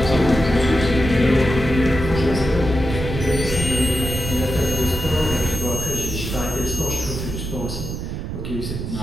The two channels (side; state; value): right; noise; rumble, 5 dB below the sound